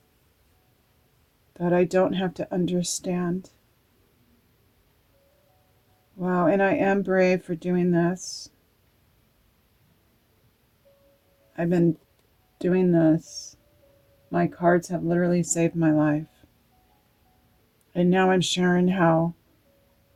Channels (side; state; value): both; identical; correlation 1.00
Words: that I don't have to understand. Wow, and I am brave for doing this. I've been doing this. My cards have literally saved my life. And now I'm sharing how